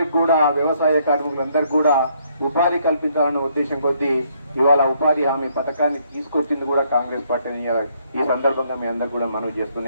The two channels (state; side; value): inverted; both; correlation -0.69